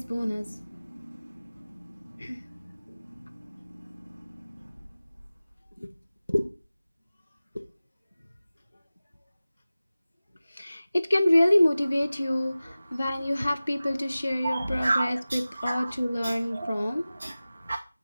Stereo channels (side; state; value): both; inverted; correlation -0.97